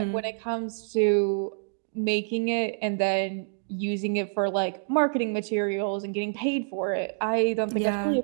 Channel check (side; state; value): left; silent; digital silence